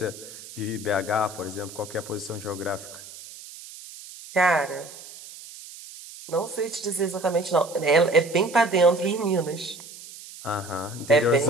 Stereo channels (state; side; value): noise; right; hiss, 16 dB below the sound